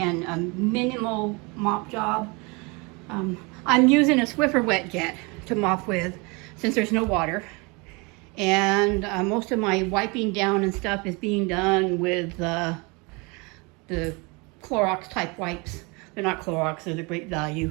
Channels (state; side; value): quieter; left; 28.5 dB